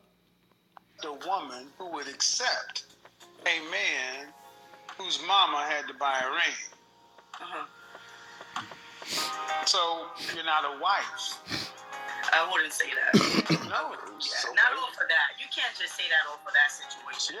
The woman who would accept a man whose mama had to buy a ring. Uh-huh. So you're not a wife. I wouldn't say that. No, Yeah, not all for that. You can't just say that all for that situation.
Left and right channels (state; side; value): identical; both; correlation 1.00